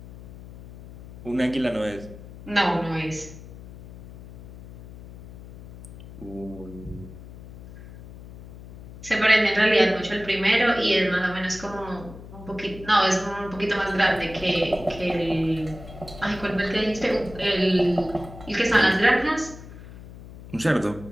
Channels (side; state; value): left; noise; hum, 16 dB below the sound